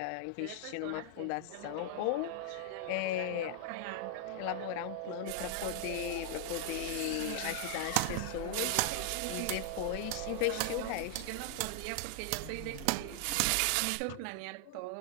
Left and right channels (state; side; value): different; both; correlation 0.00